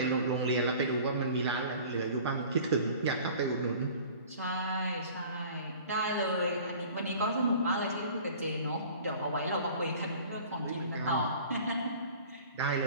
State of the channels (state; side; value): inverted; both; correlation -0.45